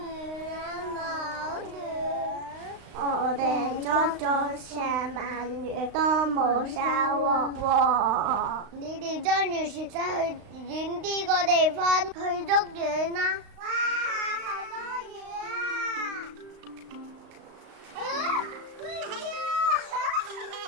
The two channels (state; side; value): late; left; 36 ms